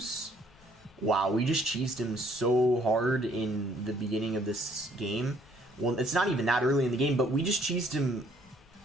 Wow, we just cheesed him so hard in the beginning of this game. Well, it's not even that early in the game, but we just cheesed him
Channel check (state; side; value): noise; left; rumble, 28 dB below the sound